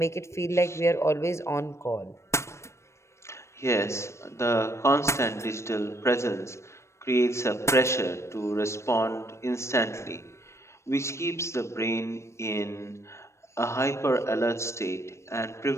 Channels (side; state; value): right; late; 0.13 ms